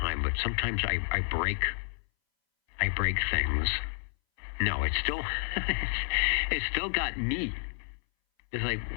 but sometimes I break things. No, it's still got me. It's like,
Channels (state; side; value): silent; right; 58 dB below the other